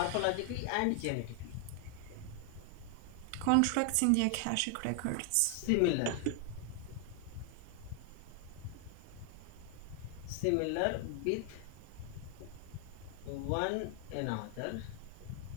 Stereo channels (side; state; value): both; different; correlation 0.00